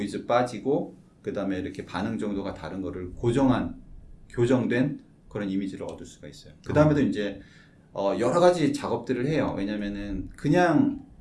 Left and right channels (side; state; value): both; identical; correlation 1.00